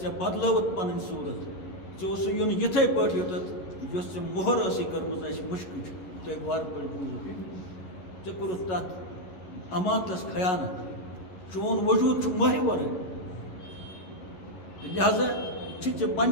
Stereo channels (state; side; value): late; right; 11 ms